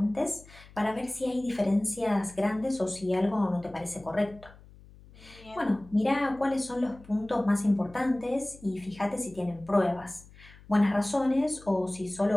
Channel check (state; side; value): noise; left; hum, 22 dB below the sound